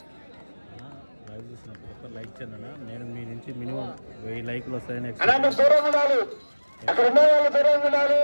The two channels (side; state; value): both; inverted; correlation -1.00